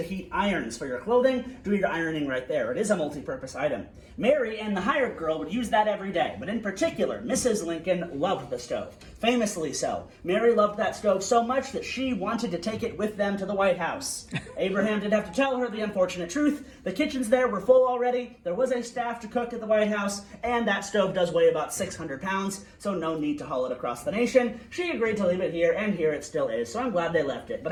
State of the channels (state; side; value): identical; both; correlation 1.00